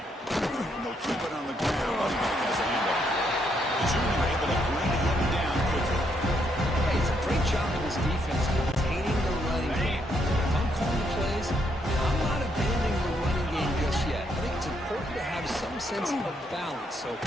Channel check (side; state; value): both; normal; correlation 0.75